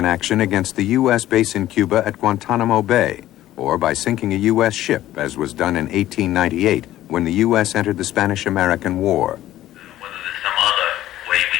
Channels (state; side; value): quieter; right; 14.0 dB